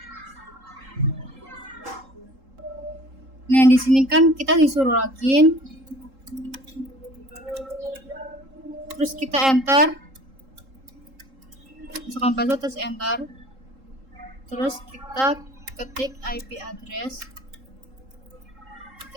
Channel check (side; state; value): left; late; 3.8 ms